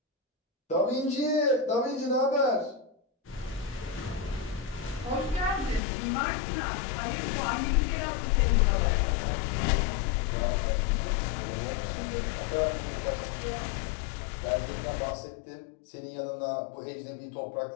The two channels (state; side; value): drops out; right; at 5.8 s